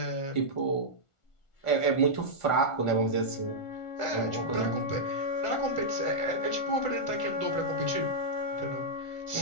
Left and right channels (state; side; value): late; right; 1.4 ms